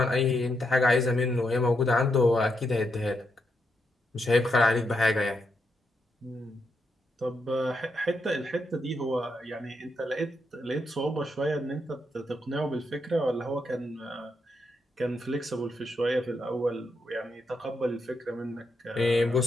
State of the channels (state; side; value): normal; both; correlation 0.81